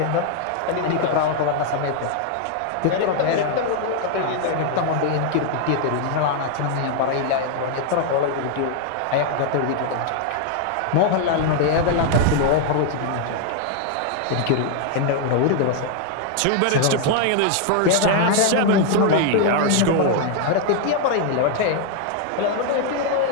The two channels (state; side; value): different; both; correlation 0.00